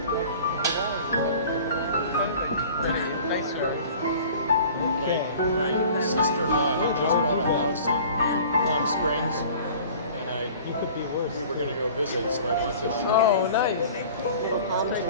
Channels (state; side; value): inverted; both; correlation -0.45